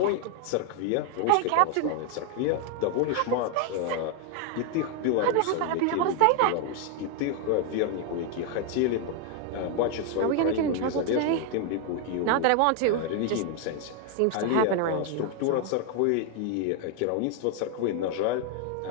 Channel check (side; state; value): both; different; correlation 0.00